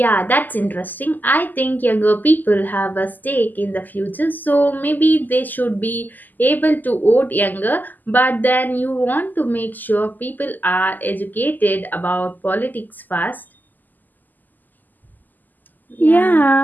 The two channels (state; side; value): late; right; 0.085 ms